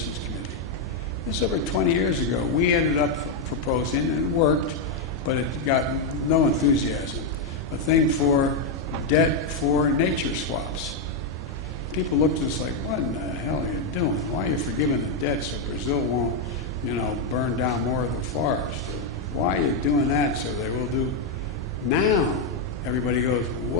Committee. This was over 20 years ago. We ended up proposing, and it worked, but it got no enthusiasm, a thing for debt for nature swaps. People looked at us like, what in the hell are you doing? Why are you forgiving the debt so Brazil won't, burn down more of the forest? Why are you doing that so they will do? Now, everybody goes,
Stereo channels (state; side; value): quieter; right; 3.2 dB